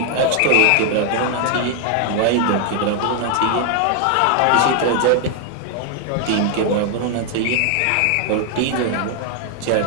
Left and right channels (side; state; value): both; different; correlation 0.00